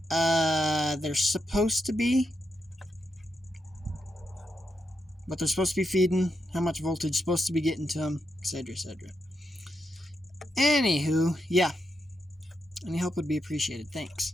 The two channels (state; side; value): normal; both; correlation 0.84